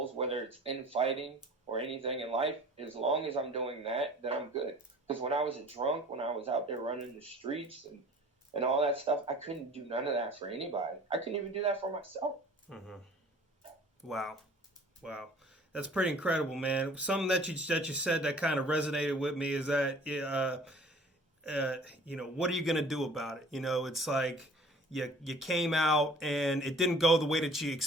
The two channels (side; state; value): both; normal; correlation 0.49